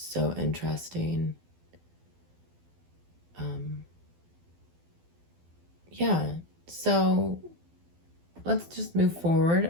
interesting. So let's just move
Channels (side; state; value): left; late; 12 ms